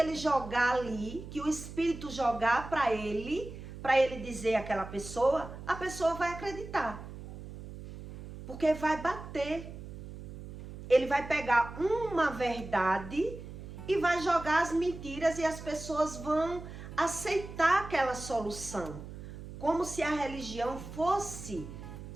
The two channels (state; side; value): noise; right; hum, 12 dB below the sound